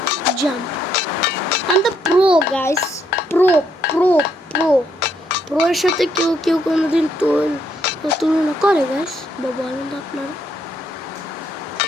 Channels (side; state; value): both; normal; correlation 0.73